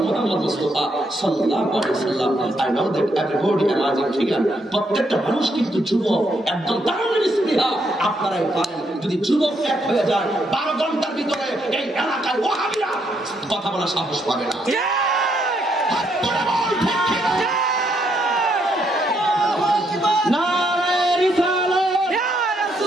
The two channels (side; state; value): both; normal; correlation 0.75